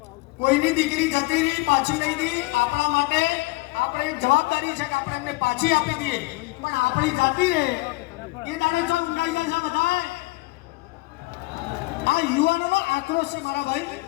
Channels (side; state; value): right; quieter; 22.8 dB